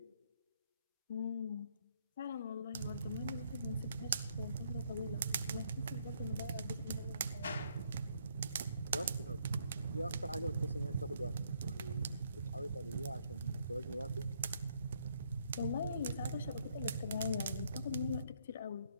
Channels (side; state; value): both; inverted; correlation -0.70